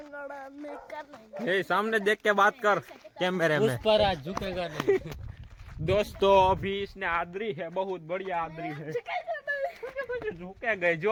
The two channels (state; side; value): identical; both; correlation 1.00